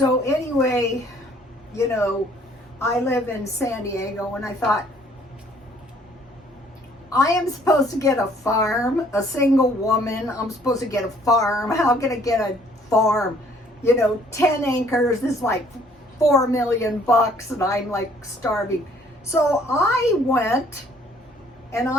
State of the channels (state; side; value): normal; both; correlation 0.60